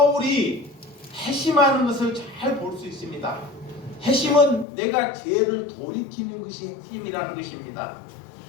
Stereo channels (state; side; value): drops out; right; at 4.7 s